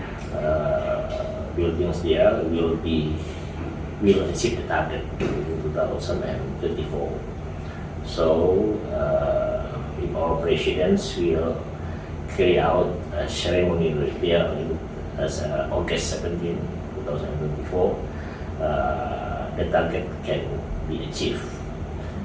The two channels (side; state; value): both; identical; correlation 1.00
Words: buildings there will achieve the target in 2024. So if our presidents will carry out a ceremony there as August 17, 2024, the target can be achieved.